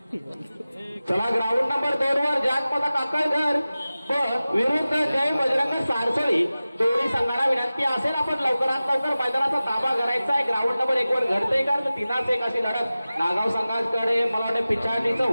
चला ग्राउंड नंबर 2 वर जागपदा काकळघर विरुद्ध जय बजरंग सारसळी दोन्ही संघाला विनंती असेल आपण लवकरात लवकर मैदानाचा ताबा करायचा आहे. ग्राउंड नंबर 1 वर घडते का तर 3-1 अशी लढत नागाव संघाकडे मला वाटतं पिछाडीचं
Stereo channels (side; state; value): both; inverted; correlation -0.96